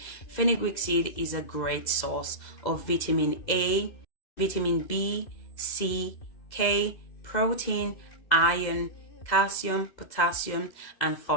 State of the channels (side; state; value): right; late; 2.0 ms